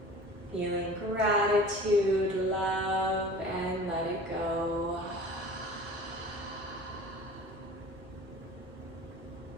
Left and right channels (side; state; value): both; normal; correlation 0.42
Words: Feeling gratitude, love, and let it go.